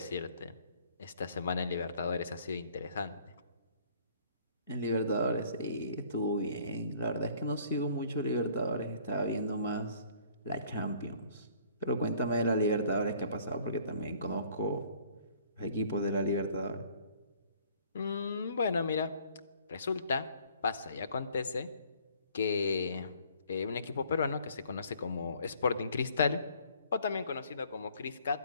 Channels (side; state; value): both; inverted; correlation -0.57